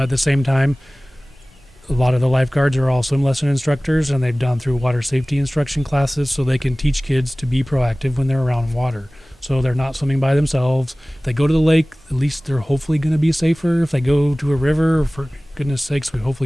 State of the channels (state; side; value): normal; both; correlation 0.98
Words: the same time, a lot of the lifeguards are all swim lesson instructors, and they've gone through water safety instruction classes so they can teach kids to be proactive when they're around water. So they're not swimming by themselves. If they go to the lake, at least they're hopefully going to be safer. If they go to a river, for goodness sakes,